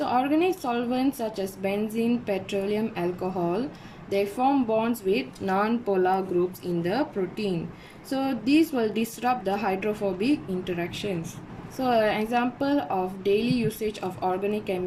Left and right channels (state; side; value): identical; both; correlation 1.00